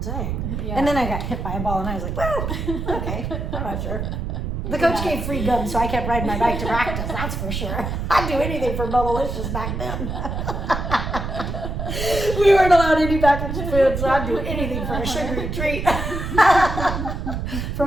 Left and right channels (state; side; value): noise; right; rumble, 4 dB below the sound